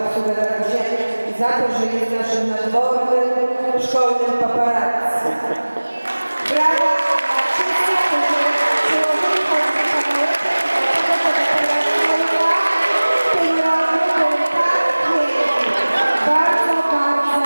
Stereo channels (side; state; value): both; inverted; correlation -1.00